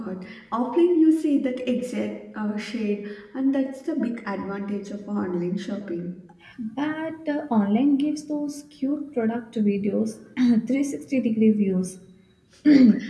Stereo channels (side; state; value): both; identical; correlation 1.00